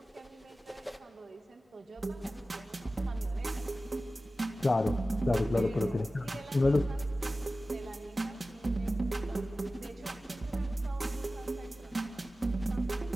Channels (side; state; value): both; normal; correlation 0.95